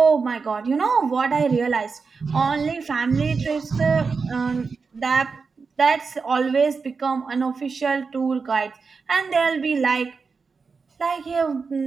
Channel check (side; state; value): left; quieter; 4.9 dB